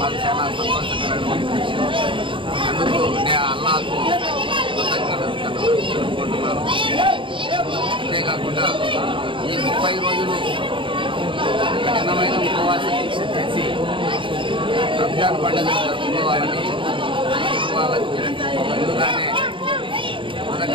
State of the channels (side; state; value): left; late; 0.25 ms